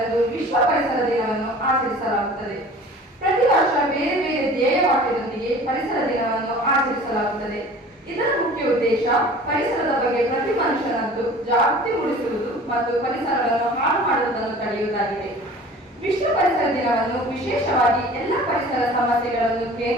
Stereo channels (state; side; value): normal; both; correlation 0.44